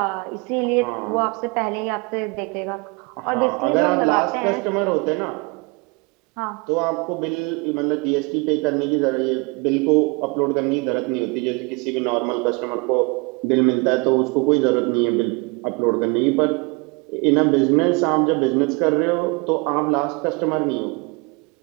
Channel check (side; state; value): left; quieter; 29.4 dB